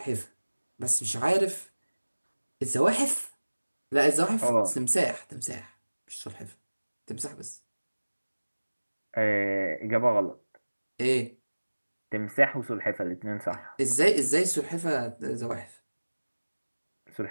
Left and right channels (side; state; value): both; inverted; correlation -1.00